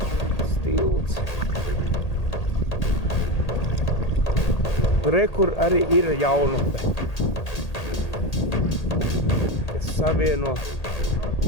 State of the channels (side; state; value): right; late; 1.8 ms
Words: Tilts. Re, kur arī ir jaunupe, kas savieno.